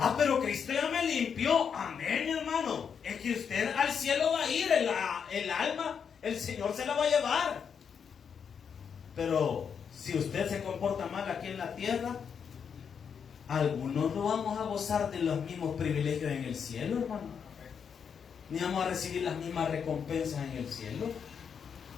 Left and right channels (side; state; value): right; quieter; 7.0 dB